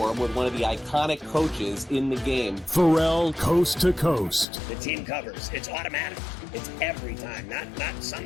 with one of the iconic coaches in the game. Pharrell, coast to coast. The team covers. It's automatic. It's every time. Not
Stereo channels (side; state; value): right; drops out; at 4.5 s